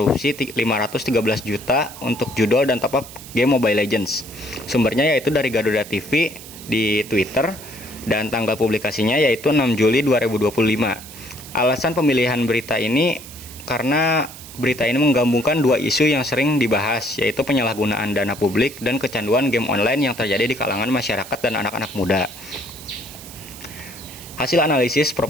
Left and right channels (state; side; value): noise; right; hiss, 16 dB below the sound